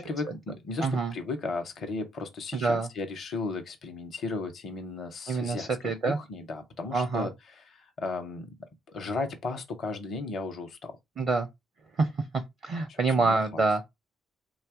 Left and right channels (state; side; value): normal; both; correlation 0.72